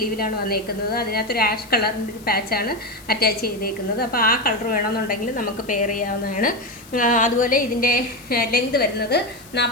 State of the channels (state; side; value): noise; left; hiss, 22 dB below the sound